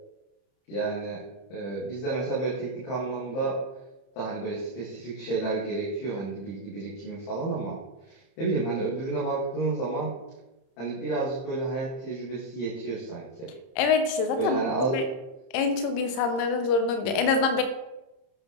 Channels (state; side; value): late; right; 30 ms